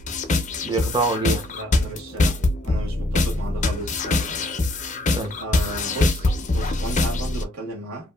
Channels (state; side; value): normal; both; correlation 0.67